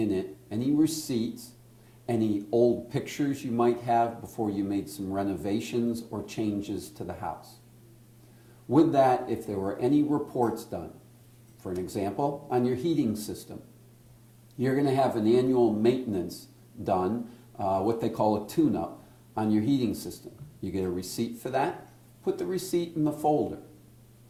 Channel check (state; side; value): identical; both; correlation 1.00